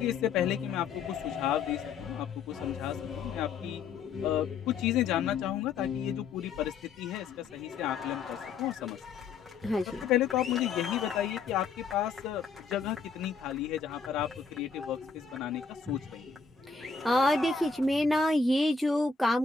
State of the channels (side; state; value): right; quieter; 5.2 dB